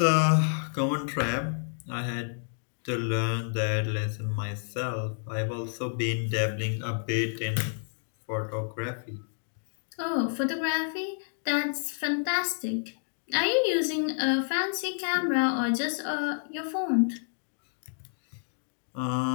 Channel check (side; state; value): right; silent; digital silence